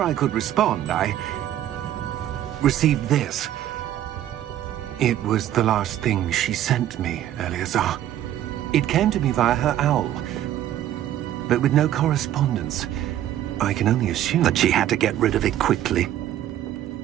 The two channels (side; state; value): left; quieter; 12.1 dB